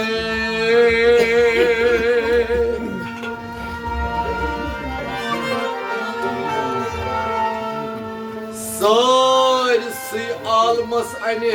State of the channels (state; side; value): identical; both; correlation 1.00